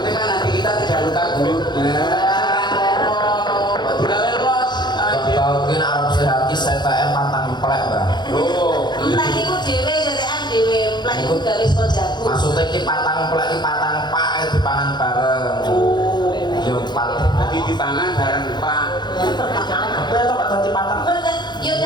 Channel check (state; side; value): late; right; 0.21 ms